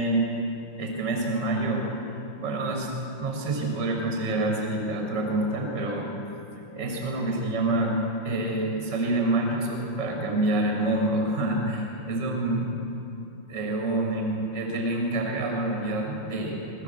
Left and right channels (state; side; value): late; right; 5.3 ms